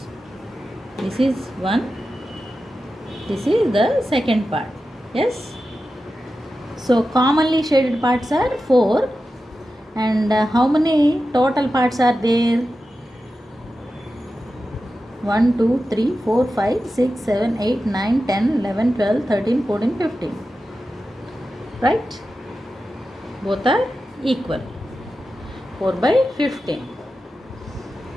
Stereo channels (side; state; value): both; normal; correlation 0.92